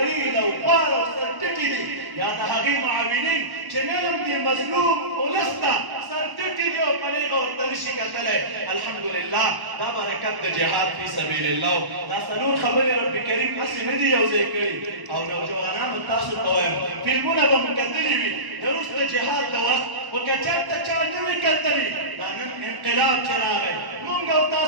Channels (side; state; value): left; late; 1.0 ms